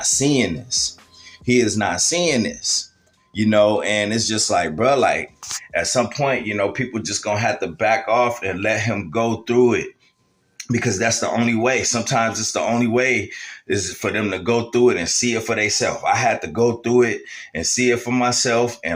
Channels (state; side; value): identical; both; correlation 1.00